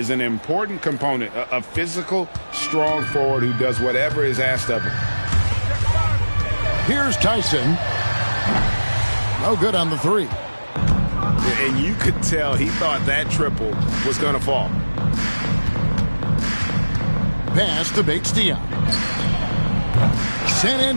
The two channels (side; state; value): both; inverted; correlation -1.00